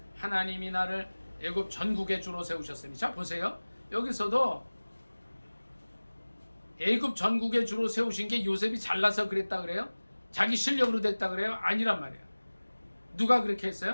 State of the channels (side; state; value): both; inverted; correlation -1.00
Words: 하나님이 나를 애굽 전국의 주로 세우셨으니. 자, 보세요. 여기서도 애굽 전국의 주로 세우신 게 요셉이 잘나서 그랬다 그래요? 자기 실력으로 됐다 그래요? 아니란 말이에요. 누가 그렇게